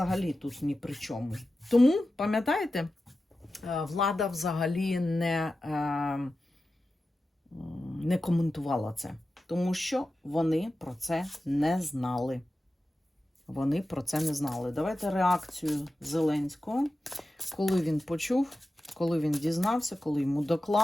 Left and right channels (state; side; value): normal; both; correlation 0.93